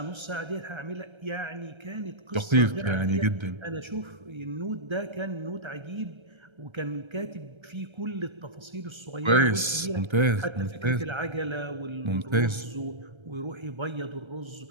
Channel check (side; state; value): left; late; 1.3 ms